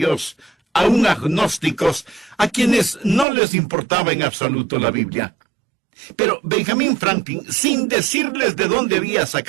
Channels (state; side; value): drops out; left; at 3.2 s